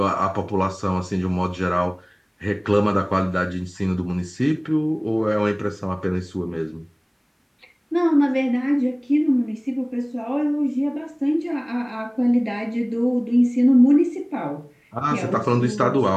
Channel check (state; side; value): identical; both; correlation 1.00